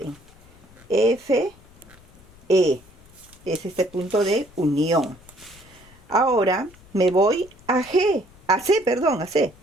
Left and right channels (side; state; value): left; noise; rumble, 25 dB below the sound